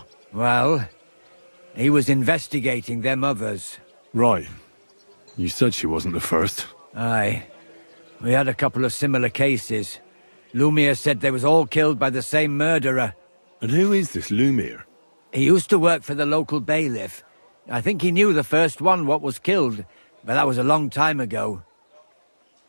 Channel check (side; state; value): both; inverted; correlation -1.00